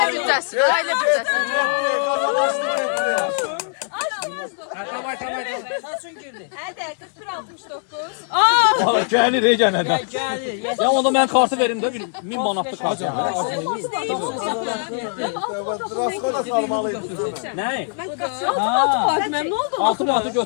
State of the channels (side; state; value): right; silent; 65 dB below the other